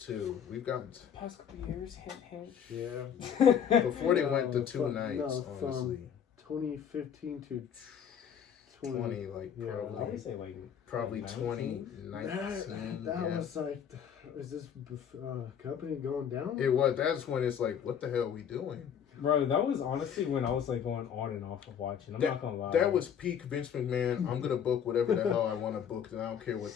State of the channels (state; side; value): quieter; right; 8.3 dB